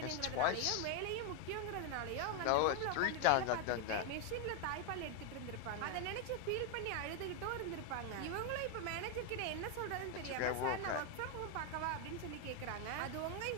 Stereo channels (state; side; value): different; both; correlation 0.01